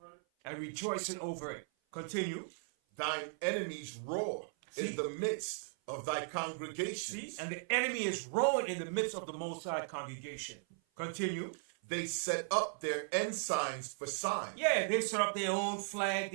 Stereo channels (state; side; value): silent; left; 53 dB below the other